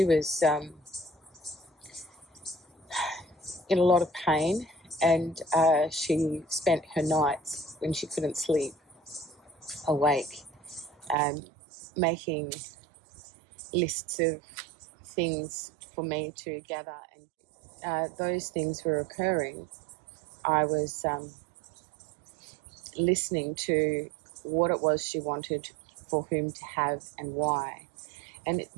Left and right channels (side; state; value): left; drops out; at 11.2 s